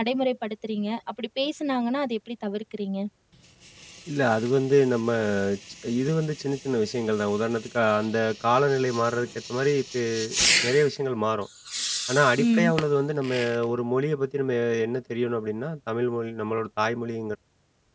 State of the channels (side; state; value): both; identical; correlation 1.00